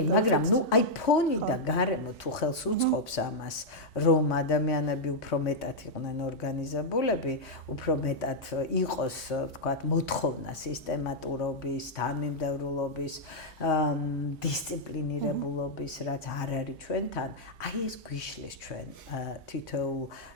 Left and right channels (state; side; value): normal; both; correlation -0.05